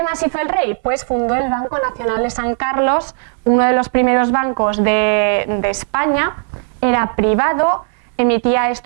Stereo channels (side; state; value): left; silent; digital silence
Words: más hizo el rey? Pues fundó el Banco Nacional de San Carlos, uno de los primeros bancos de España. Era privado, emitía